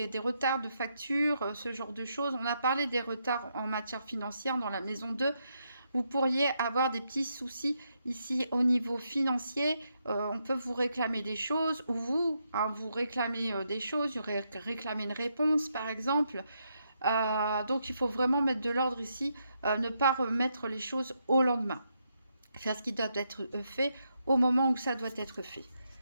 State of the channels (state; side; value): inverted; both; correlation -0.80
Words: retards de facture, ce genre de choses. On a parlé des retards en matière financière dans la maison 2. Vous pourriez avoir des petits soucis ici au niveau financier. On peut vous réclamer des choses, ou vous, hein, vous réclamez des choses, vous réclamez une réponse par exemple. Donc il faut vraiment mettre de l'ordre ici, ne pas remettre les choses au lendemain. Faire ce qui doit être fait au moment où ça doit être fait.